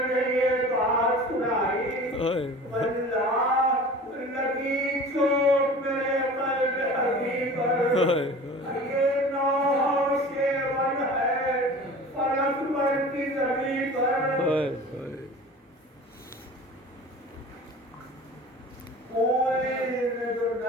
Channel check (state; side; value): normal; both; correlation 0.40